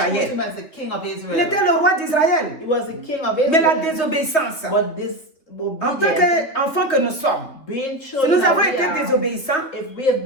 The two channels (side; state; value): right; late; 3.5 ms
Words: as the king of Il Israel. était le roi d'Israël. He was the king of Mais la Israel. désobéissance, But this en tant obedience, qu'enfants que nous sommes, being si children nous avons that we été are, désobéissants, if we have